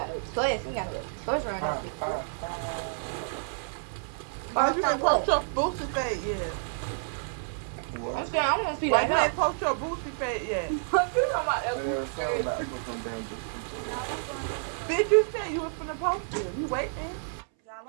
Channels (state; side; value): silent; left; 58 dB below the other